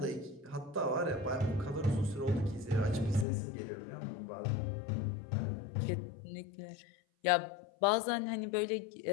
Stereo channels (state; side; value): drops out; right; at 3.2 s